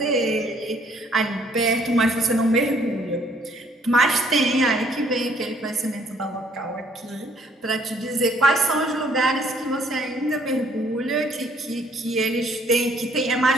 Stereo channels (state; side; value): normal; both; correlation 0.63